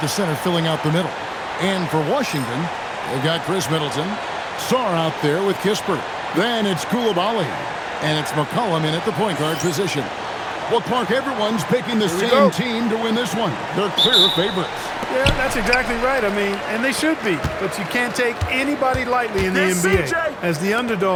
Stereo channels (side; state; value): both; identical; correlation 1.00